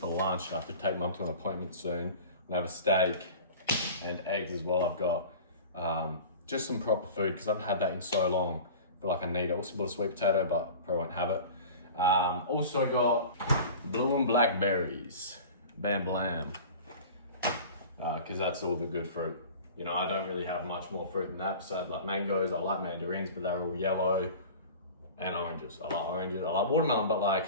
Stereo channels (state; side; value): inverted; both; correlation -0.38